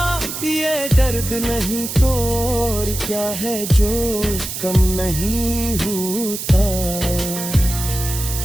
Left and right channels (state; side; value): noise; right; hiss, 6 dB below the sound